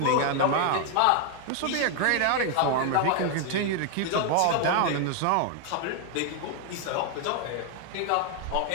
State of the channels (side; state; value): both; different; correlation 0.00